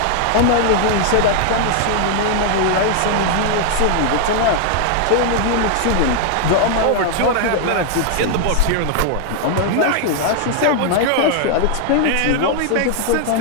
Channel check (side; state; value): both; different; correlation 0.00